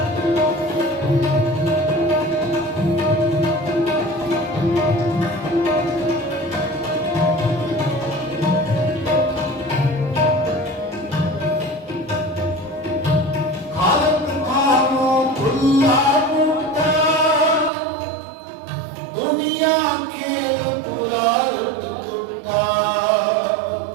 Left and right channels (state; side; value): drops out; left; at 17.7 s